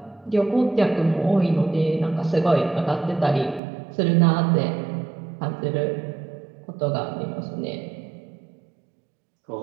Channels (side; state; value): left; drops out; at 3.6 s